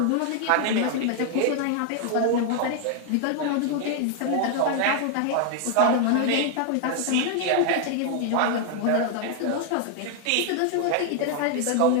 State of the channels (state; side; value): different; both; correlation 0.00